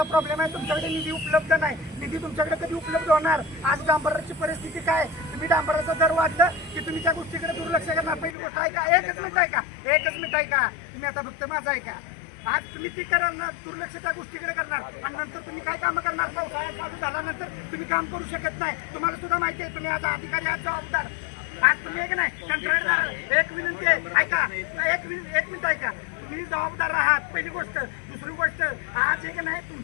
प्रॉब्लेम आहे. तुमच्याकडे निधी उपलब्ध नाही. निधी तुमच्याकडे कधी उपलब्ध होणार? आज डांबराची परिस्थिती काय? तुम्ही डांबराचा दर वाढलं की तुम्ही त्या गोष्टीकडे दुर्लक्ष करणार. पहिली गोष्ट आहे का? एकच मिनिट आहे का? तुम्ही आता फक्त माझा आहे का? आज तुम्ही ती करणार दुर्लक्ष त्या गोष्टीकडे करणार आणि नंतर तुम्ही काय कामं करणार? पावसाळ्यात चालू झाल्यानंतर तुम्ही काम करू शकत नाही. तुम्हाला सुद्धा माहिती आहे तुम्ही आज अधिकारी आज जबाबदार. आज तुम्ही एक नाही कंत्राटदार. एक विनंती आहे ऐका. एक मिनिट ऐका. तुम्ही जबाबदार आहात पहिली गोष्ट. दुसरी गोष्ट आज एक नाही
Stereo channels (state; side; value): drops out; right; at 8.3 s